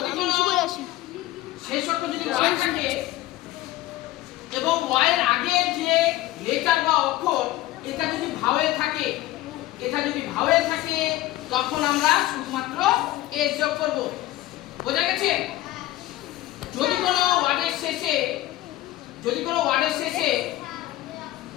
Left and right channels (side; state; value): right; quieter; 15.9 dB